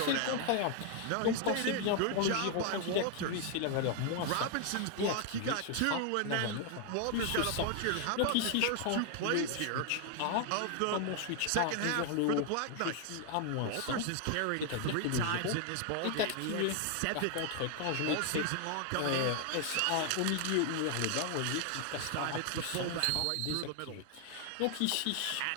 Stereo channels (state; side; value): different; both; correlation 0.00